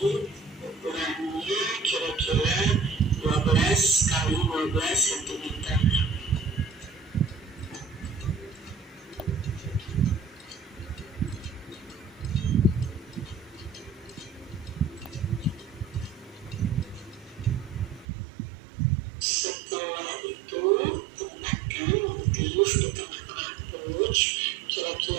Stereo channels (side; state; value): left; drops out; at 18.1 s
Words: ukurannya kira-kira 12 kali 12 cm. Setelah itu tempatkan motif di tengah-tengah pouch